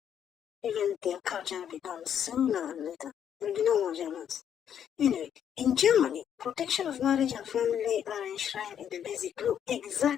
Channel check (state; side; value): quieter; right; 9.1 dB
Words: even their culture will be gone sooner or later. There will be no more Germans. Anyway, in Germany, protection of marriage and family are enshrined in the basic law,